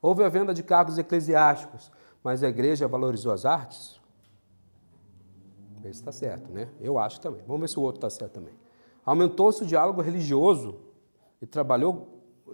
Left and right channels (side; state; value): both; inverted; correlation -1.00